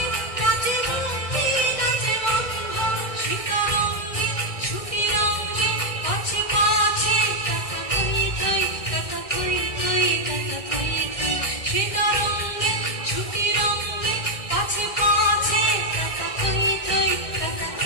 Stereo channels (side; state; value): right; late; 2.0 ms